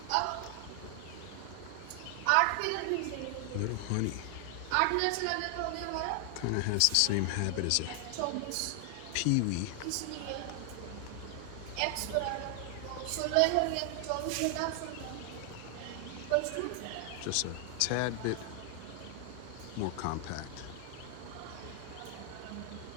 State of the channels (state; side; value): different; both; correlation 0.00